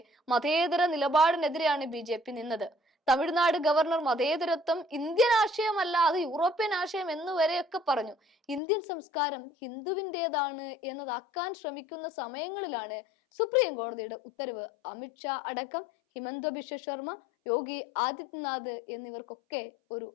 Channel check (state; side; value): drops out; right; at 8.6 s